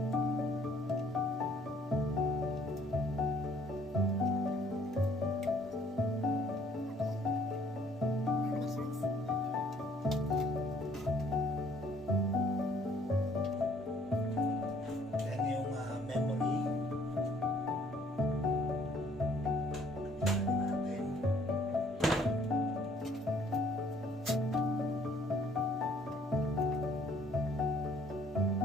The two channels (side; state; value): both; normal; correlation 0.60